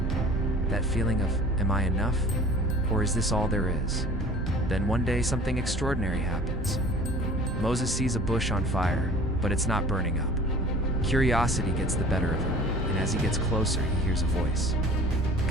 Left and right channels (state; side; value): normal; both; correlation 0.46